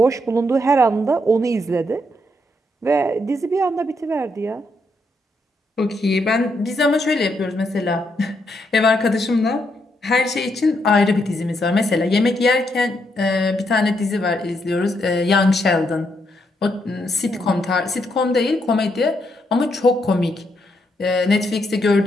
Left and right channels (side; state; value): both; normal; correlation 0.77